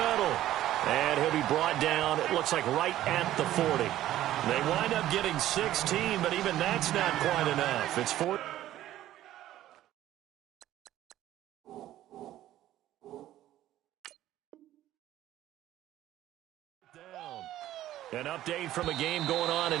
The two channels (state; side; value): quieter; left; 13.6 dB